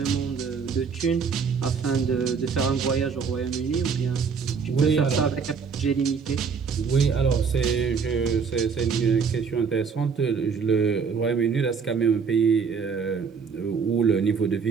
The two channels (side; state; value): left; quieter; 5.8 dB